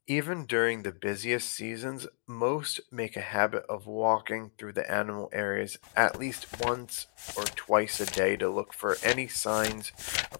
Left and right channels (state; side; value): silent; right; 57 dB below the other